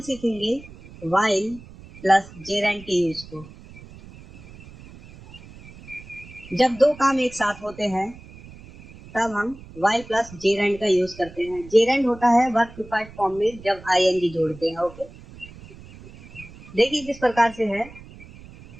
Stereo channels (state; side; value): noise; right; rumble, 19 dB below the sound